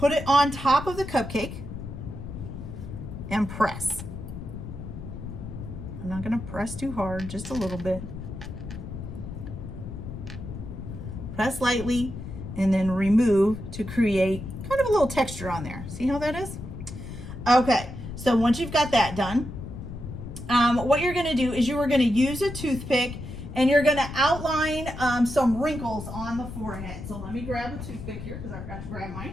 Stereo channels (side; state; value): left; noise; rumble, 9 dB below the sound